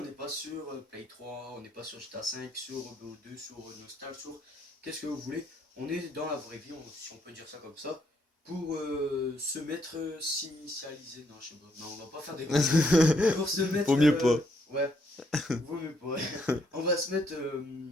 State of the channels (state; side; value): normal; both; correlation 0.72